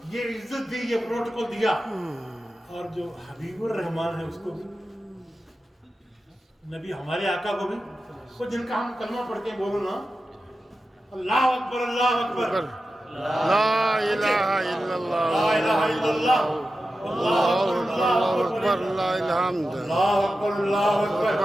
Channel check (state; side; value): normal; both; correlation 0.92